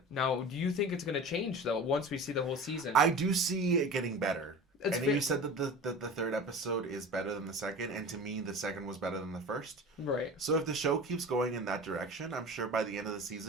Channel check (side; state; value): both; normal; correlation 0.35